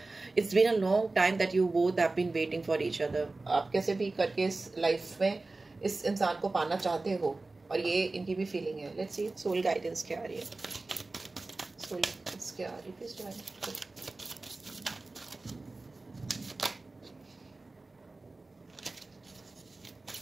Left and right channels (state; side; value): quieter; left; 3.3 dB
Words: it's been a long time that you both have been waiting for each other. आप कैसे भी करके इस लाइफ में इस इंसान को पाना चाहते हो और ये इनकी भी फीलिंग है। लेट्स सी सोल गाइडेंस क्या आ रही है, सोल गाइडेंस क्या आ रही है please divine.